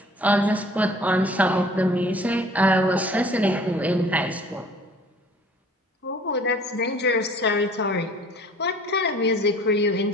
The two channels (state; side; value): normal; both; correlation 0.51